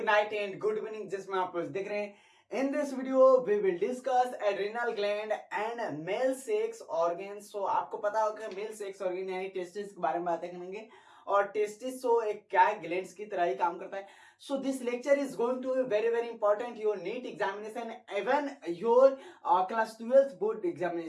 night and good evening जिसमें आप लोग देख रहे हैं. In this video we will discuss adrenal gland and male sex organs. So आपको पता होगा male sex organ यानी टेस्टिस के बारे में बातें करेंगे और टेस्टिस तो एक क्या है ग्लैंड्स की तरह ही काम करता है. So this lecture is going to be very important your NEET examination even your class 12th board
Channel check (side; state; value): both; identical; correlation 1.00